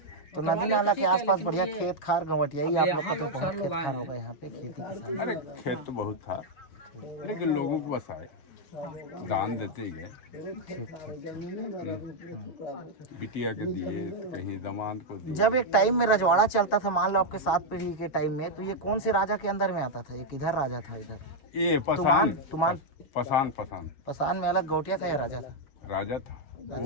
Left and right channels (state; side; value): late; right; 7.1 ms